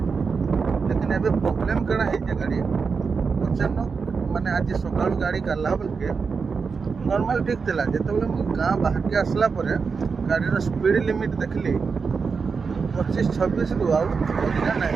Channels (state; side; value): quieter; left; 5.2 dB